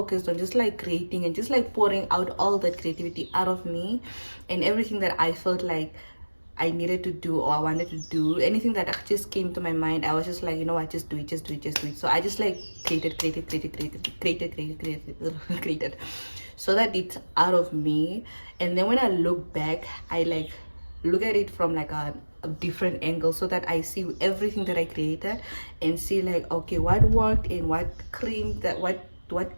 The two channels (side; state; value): both; inverted; correlation -1.00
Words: on just like creating and just like pouring out all that creativity out of me, and everything that I felt like I needed to do or I wanted to do, anything that just came to my mind, I was just like, you know what, just do it, just do it, just do it. So I just like created so that it's out of me. And then when I look back, I like look at it from like a a different angle so that I see everything that I created and see like, okay, what worked and what cringed, what